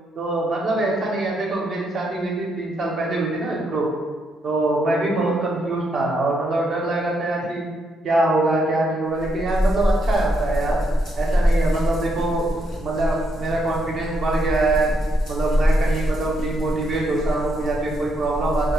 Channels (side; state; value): both; normal; correlation 0.77